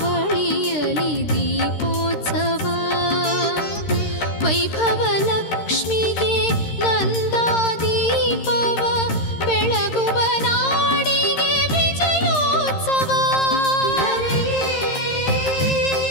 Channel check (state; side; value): late; right; 13 ms